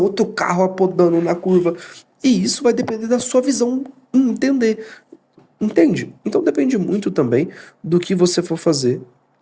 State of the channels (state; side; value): identical; both; correlation 1.00